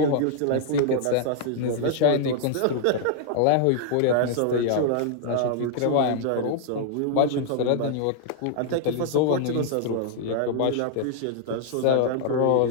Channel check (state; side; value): different; both; correlation -0.01